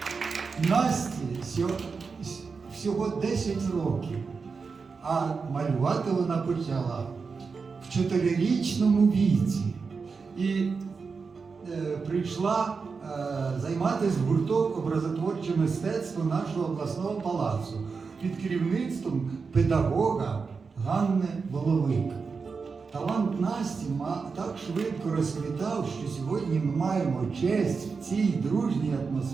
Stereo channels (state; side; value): quieter; left; 5.0 dB